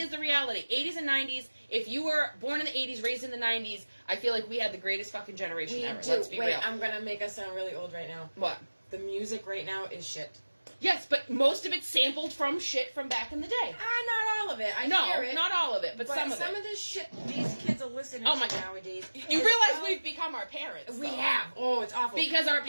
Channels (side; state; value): both; inverted; correlation -1.00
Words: the reality: 80s and 90s. If you were born in the 80s, raised in the 90s, I feel like we had the greatest fucking generation ever. Let's be real. I'm gonna make us sound really old right now. What? The music right now is shit. Yes, but most of it's sampled from shit from back in the day. Not all of it. I hear it. Not all of it, but some of it. Some of this shit these kids are listening to nowadays. You realize we've become our parents. We have. Oh, it's awful. Because our